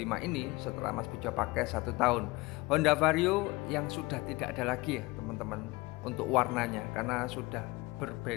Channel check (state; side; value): quieter; right; 22.7 dB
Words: ini setelah Mas Bejo pakai 1 tahun. Honda Vario yang sudah tidak ada lagi ya teman-teman untuk warnanya, karena sudah